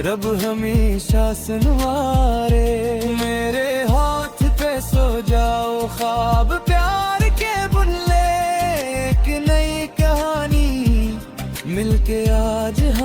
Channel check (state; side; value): identical; both; correlation 1.00